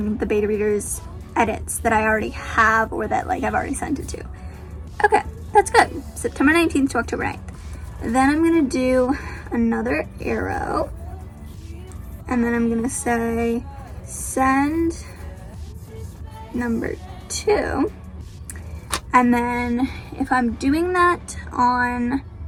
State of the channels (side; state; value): both; identical; correlation 1.00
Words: the beta readers edits that I already have, or that like I've already sent it to. Okay, that's good. September 19th to October 9th. Then I'm gonna do another arrow, and then I'm gonna say send number 2. And then if I'm doing that on